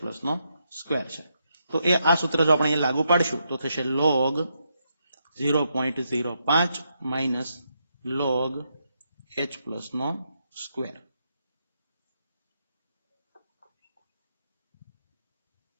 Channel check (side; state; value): both; inverted; correlation -0.81